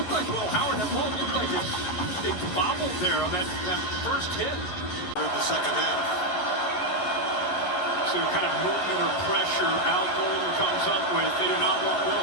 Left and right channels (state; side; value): late; right; 11 ms